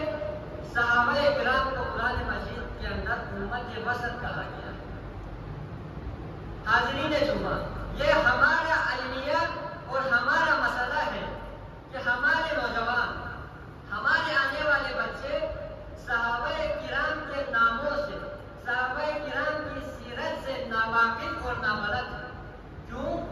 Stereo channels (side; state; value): both; identical; correlation 1.00